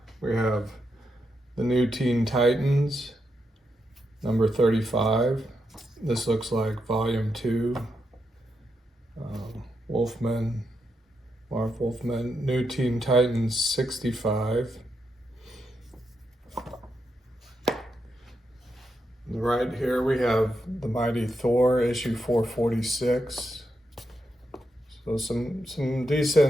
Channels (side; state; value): both; normal; correlation 0.83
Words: we have the New Teen Titans, number 35. This looks like volume 2. Wolfman, Marv Wolfman, New Teen Titans 65. Right here we have the Mighty Thor, issue 446. So some